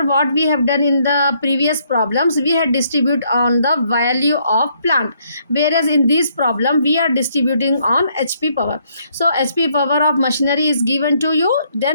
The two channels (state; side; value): inverted; both; correlation -0.70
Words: what we have done in the previous problems, we had distribute on the value of plant, whereas in this problem we are distributing on HP power. So HP power of machinery is given to you,